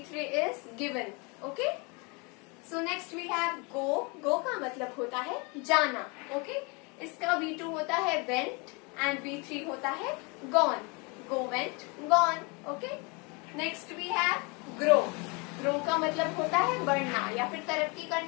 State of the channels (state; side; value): quieter; right; 30.1 dB